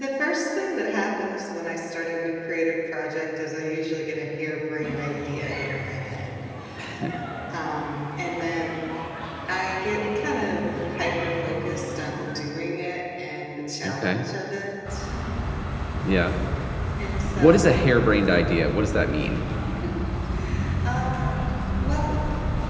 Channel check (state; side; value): identical; both; correlation 1.00